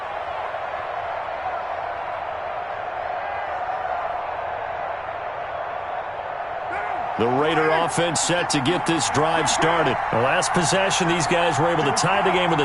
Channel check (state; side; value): identical; both; correlation 1.00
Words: The Raider offense set to get this drive started. The last possession, these guys were able to tie the game with